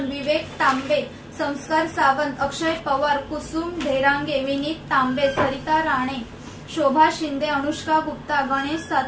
विवेक तांबे, संस्कार सावंत, अक्षय पवार, कुसुम ढेरांगे, विनीत तांबे, सरिता राणे, शोभा शिंदे, अनुष्का गुप्ता, गणेश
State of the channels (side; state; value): both; identical; correlation 1.00